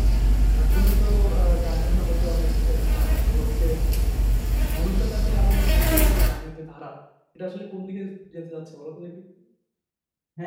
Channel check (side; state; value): both; identical; correlation 1.00